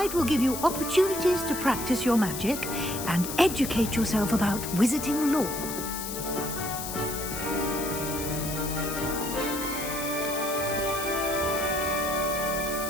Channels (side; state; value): left; noise; hiss, 7 dB below the sound